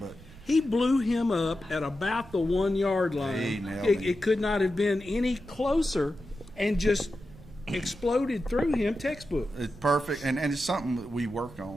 he blew him up at about the 1 yard line. He nailed him. It could not have been any closer, and just exploded through him. Textbook. it's perfect, and it's something that we work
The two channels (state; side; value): noise; right; rumble, 20 dB below the sound